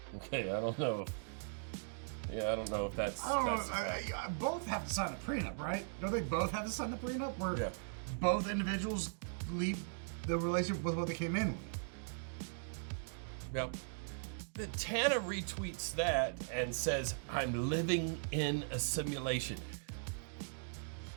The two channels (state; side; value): silent; left; digital silence